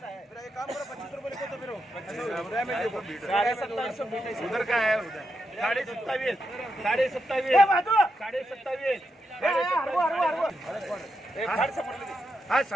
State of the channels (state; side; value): normal; both; correlation 0.84